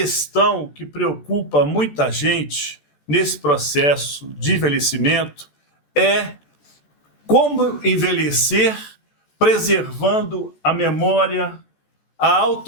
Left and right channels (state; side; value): late; right; 14 ms